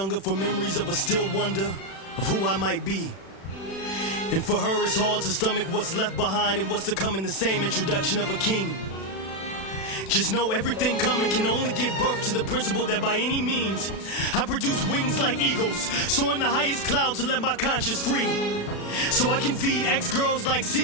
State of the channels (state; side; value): late; right; 36 ms